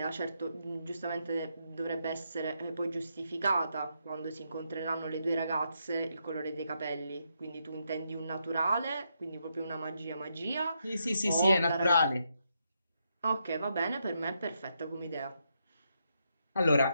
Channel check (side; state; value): both; inverted; correlation -0.80